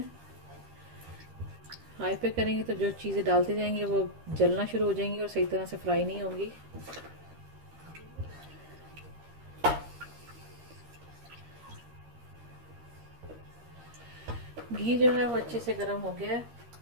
हाई पे करेंगे तो जो चीज़ें डालते जाएंगे वो जलना शुरू हो जाएंगी और सही तरह से फ्राई नहीं होंगी। घी जो है वो अच्छे से गर्म हो गया है।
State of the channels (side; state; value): left; late; 13 ms